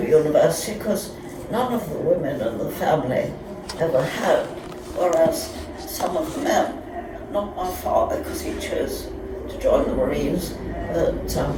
university because none of the women in the family ever had, whereas some of the men, not my father because he chose to join the Marines, but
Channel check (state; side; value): identical; both; correlation 1.00